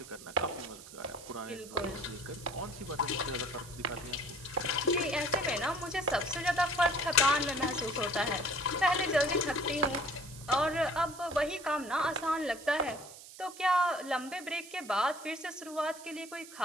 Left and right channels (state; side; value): noise; right; hiss, 16 dB below the sound